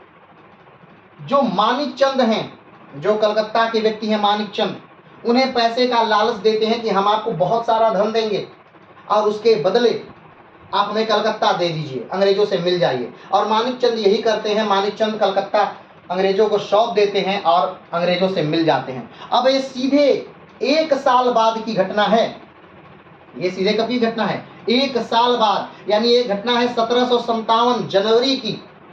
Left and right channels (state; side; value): identical; both; correlation 1.00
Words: जो मानिक चंद हैं, जो कलकत्ता के व्यक्ति हैं मानिक चंद, उन्हें पैसे का लालच देते हैं कि हम आपको बहुत सारा धन देंगे और उसके बदले आप हमें कलकत्ता दे दीजिए, अंग्रेजों से मिल जाइए। और मानिक चंद यही करते हैं, मानिक चंद कलकत्ता अंग्रेजों को सौंप देते हैं और अंग्रेजों से मिल जाते हैं। अब ये सीधे 1 साल बाद की घटना है, ये सीधे कब की घटना है, 1 साल बाद, यानी ये घटना है 1757 जनवरी की।